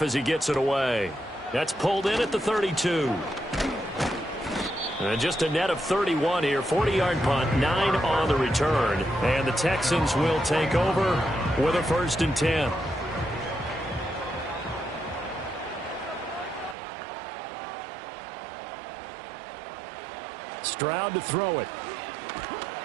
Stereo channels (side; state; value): left; drops out; at 16.8 s